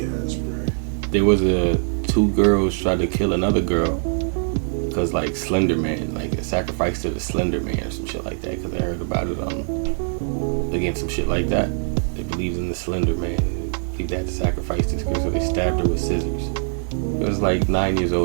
ass, bro. There was two girls tried to kill another girl because like Slender Man, like a sacrifice to the Slender Man or some shit like that. Because I heard about it again, some shit like that. They believed in the Slender Man. They believed they had to sacrifice this girl, so they stabbed her with scissors. It was like 9 years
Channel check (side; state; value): left; silent; 55 dB below the other